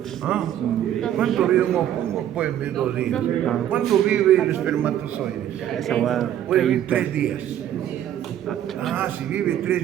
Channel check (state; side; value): quieter; left; 11.1 dB